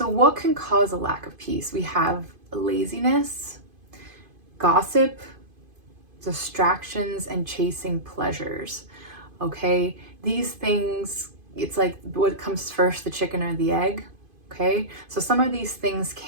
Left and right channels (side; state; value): left; late; 2.5 ms